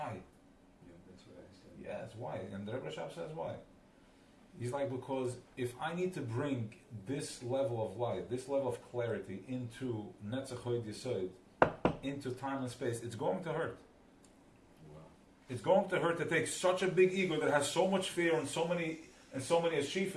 Yeah, that's what I said. Yes. Why? And the Rebbe Rashab says why. He's like, because if I need to bring this level of light, this level of clarity into Netzach Hod Yesod, into time and space, it's going to hurt. It's going to hurt to take such a big ego that has so much fear and so many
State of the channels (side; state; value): both; identical; correlation 1.00